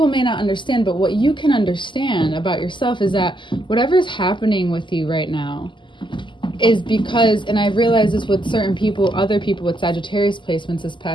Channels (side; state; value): right; late; 0.24 ms